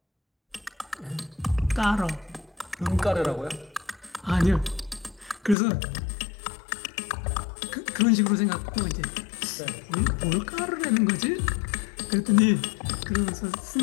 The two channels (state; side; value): drops out; right; at 5.6 s